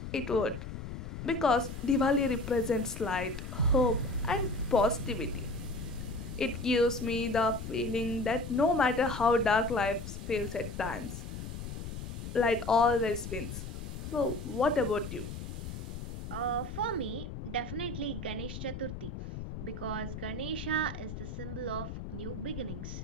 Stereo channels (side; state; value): left; noise; rumble, 7 dB below the sound